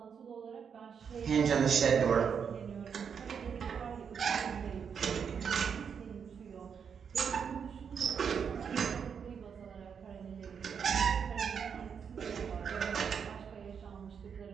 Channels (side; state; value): left; quieter; 6.9 dB